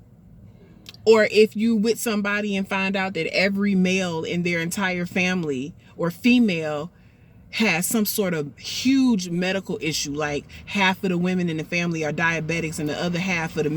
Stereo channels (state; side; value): identical; both; correlation 1.00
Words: Or if you with somebody and find out that every male in their entire family or female has some sort of huge medical issue, like half of the women in the family are diabetics and the other half of the